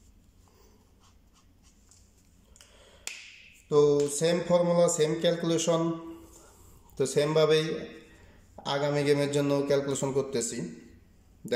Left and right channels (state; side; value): identical; both; correlation 1.00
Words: তো সেম ফর্মুলা, সেম ক্যালকুলেশন, তো সেমভাবেই আগামী গেমের জন্য ক্যালকুলেশন করতেছি।